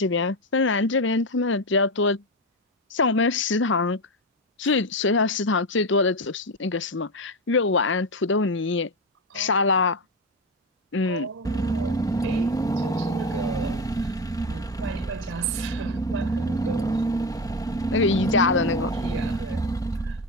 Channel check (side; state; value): both; normal; correlation 0.16